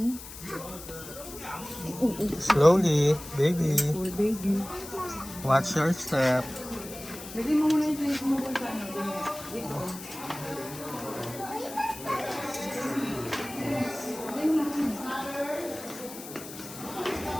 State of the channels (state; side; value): noise; left; hiss, 13 dB below the sound